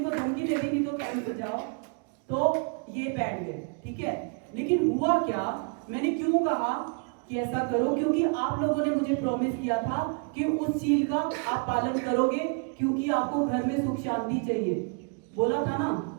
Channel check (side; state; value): left; quieter; 38.2 dB